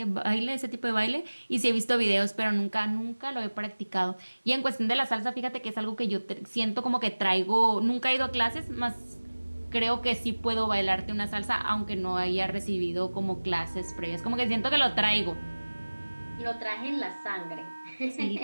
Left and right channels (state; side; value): inverted; both; correlation -1.00